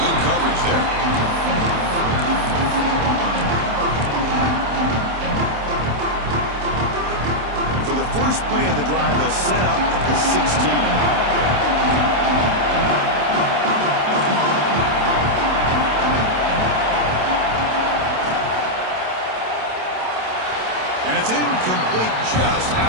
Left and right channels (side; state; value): left; late; 27 ms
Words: coverage there. And for the first play of the drive, they'll set up at the 16. And it's incomplete, just